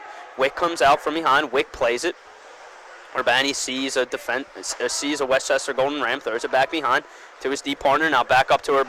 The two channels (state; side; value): identical; both; correlation 1.00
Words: Wick comes out from behind. Wick plays it. Urbani sees a Westchester Golden Ram, throws it back behind to his deep partner. Now back up to